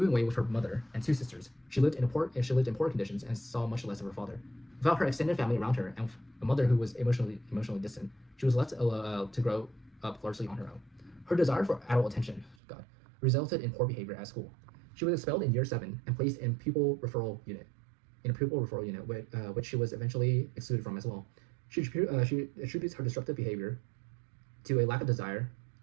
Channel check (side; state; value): left; drops out; at 12.6 s